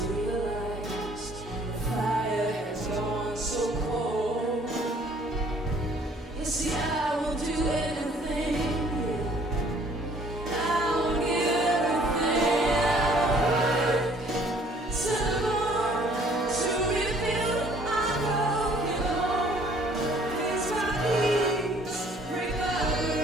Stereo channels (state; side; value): normal; both; correlation 0.58